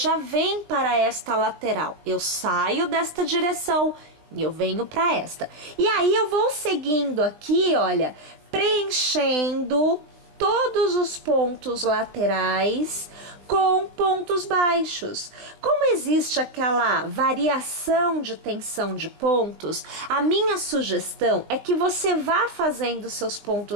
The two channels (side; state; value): left; late; 20 ms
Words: vem para esta lateral. Eu saio desta direção e eu venho para esta. E aí eu vou seguindo aqui, olha, preenchendo todos os pontos laterais com pontos baixos. Como existe aquela variação de tensão de pontos, a minha sugestão é que você vá fazendo seus